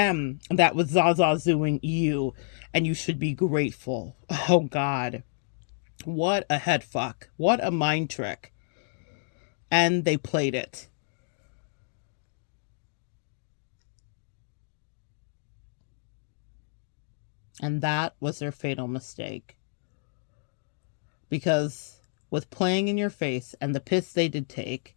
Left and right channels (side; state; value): right; silent; digital silence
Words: that was Zazazuing you. And you should be grateful. Oh, God. What a head fuck. What a mind trick. And they played it. And that was their fatal mistake. Because with playing in your face and the piss they did take,